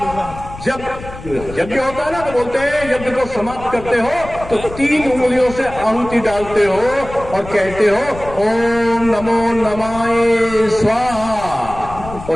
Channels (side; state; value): left; noise; rumble, 14 dB below the sound